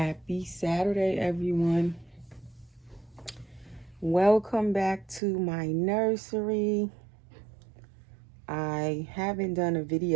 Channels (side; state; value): left; drops out; at 5.2 s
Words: Saturday, everyone. Welcome back to my nursery. I haven't done a